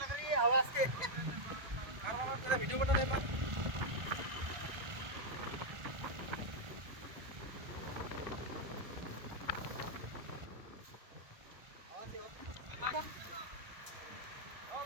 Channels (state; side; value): late; left; 1.4 ms